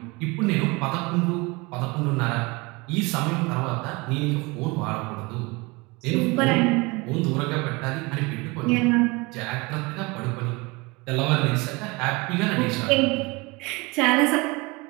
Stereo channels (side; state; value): left; quieter; 25.6 dB